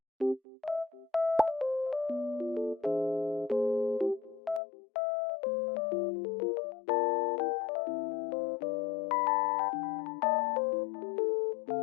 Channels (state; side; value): drops out; right; at 4.6 s